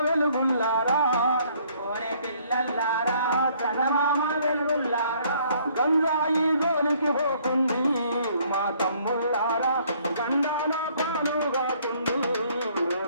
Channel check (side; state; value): both; inverted; correlation -0.62